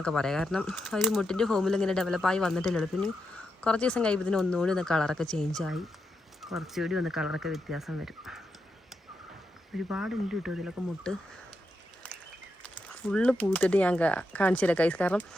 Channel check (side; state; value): both; normal; correlation 0.85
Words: പറയാം. കാരണം ആ ഒരു മുട്ടിൻ്റെ ഫോമിൽ ഇങ്ങനെ ഡെവലപ്പായി വന്നിട്ടില്ലല്ലോ. പിന്നെ കുറച്ച് ദിവസം കഴിയുമ്പോൾ ഒന്നുകൂടി ഒന്ന് കളറൊക്കെ ചേഞ്ചായി കുറച്ചുകൂടി ഒന്ന് കളറൊക്കെ വ്യത്യാസം വരും. ഒരുപാടുണ്ട് കേട്ടോ ഇതിലൊക്കെ മുട്ട്. ഫുള്ള് പൂത്തിട്ട് ഞാൻ കാണിച്ചു തരാം കൈസ്. കാരണം